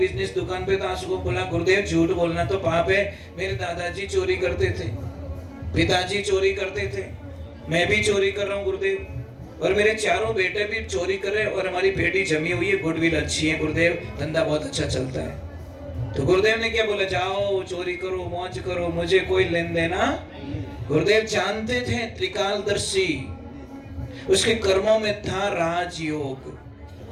दुकान पे तो आ सकूं। बोला गुरुदेव झूठ बोलना तो पाप है, मेरे दादाजी चोरी करते थे, पिताजी चोरी करते थे, मैं भी चोरी कर रहा हूँ गुरुदेव, और मेरे चारों बेटे भी चोरी कर रहे, और हमारी बेटी जमी हुई है, गुडविल अच्छी है गुरुदेव, धंधा बहुत अच्छा चलता है। तो गुरुदेव ने क्या बोला, जाओ चोरी करो, मौज करो, मुझे कोई लेन देना। गुरुदेव जानते थे त्रिकालदर्शी, उसके कर्मों में था राजयोग।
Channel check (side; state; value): both; identical; correlation 1.00